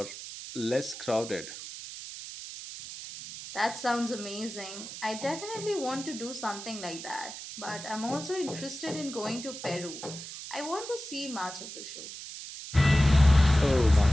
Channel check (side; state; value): right; noise; hiss, 11 dB below the sound